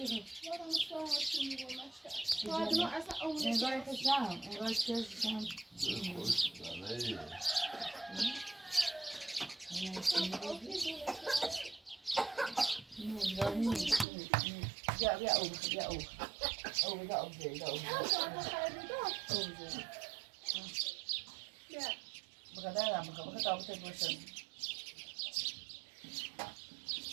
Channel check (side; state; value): left; drops out; at 14.1 s